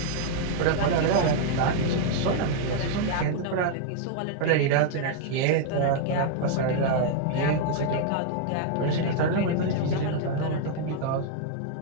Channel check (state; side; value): different; both; correlation 0.00